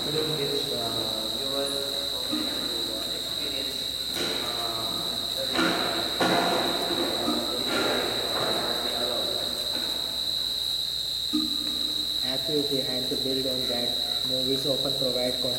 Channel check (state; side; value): noise; left; hum, 18 dB below the sound